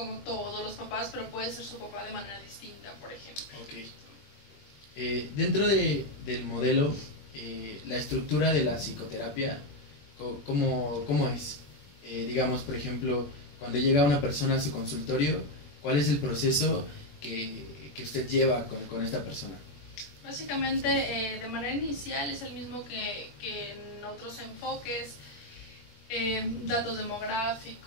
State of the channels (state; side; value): late; right; 21 ms